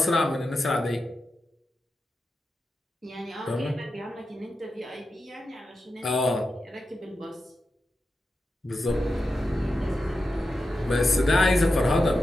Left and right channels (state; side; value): normal; both; correlation 0.90